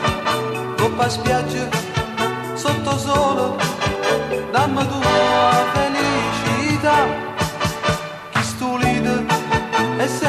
coppa spiaggia, sotto sole, dammi tua felicità, chi stulite è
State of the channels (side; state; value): both; identical; correlation 1.00